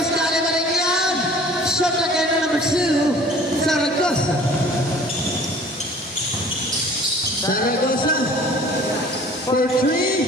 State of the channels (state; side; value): normal; both; correlation 0.49